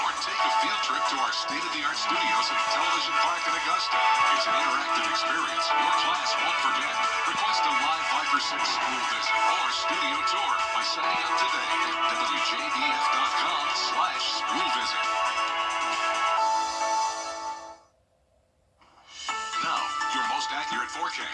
Or take a field trip to our state-of-the-art studios at Television Park in Augusta. It's an interactive experience your class won't forget. Request a live Viper 6 school visit or studio tour by signing up today at WJBF.com/school visit.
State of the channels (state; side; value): identical; both; correlation 1.00